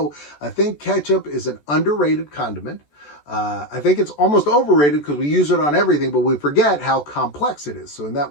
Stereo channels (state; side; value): late; right; 14 ms